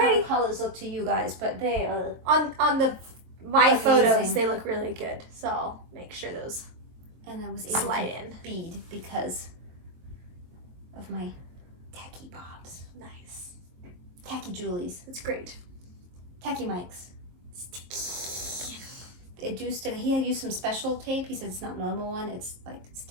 pretty. the colors look to you guys, but they are. On the my Amazing. photos, they look really good. So I'll make sure those And I was able slide to in. bead because of my tacky bobs. Nice. Tacky Julies. That's great. Tacky mics. Sticky. It do stick. He had used some special tape. He said it's not normal one. It's like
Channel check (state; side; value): late; left; 22 ms